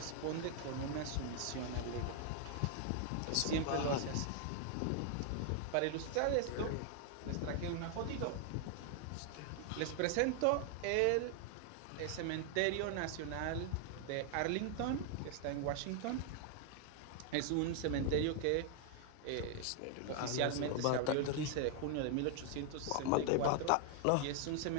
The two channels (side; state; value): both; different; correlation 0.00